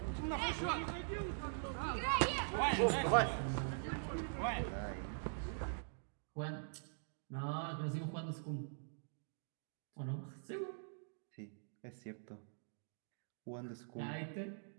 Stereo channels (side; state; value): left; silent; digital silence